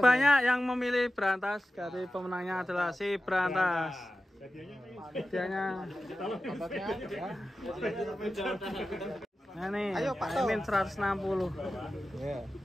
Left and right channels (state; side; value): normal; both; correlation 0.94